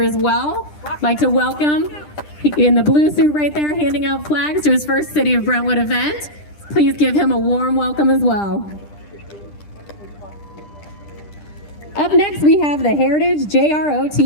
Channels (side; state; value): right; late; 10 ms